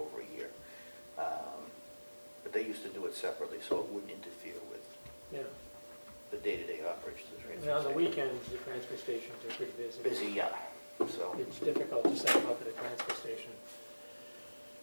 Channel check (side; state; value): both; inverted; correlation -1.00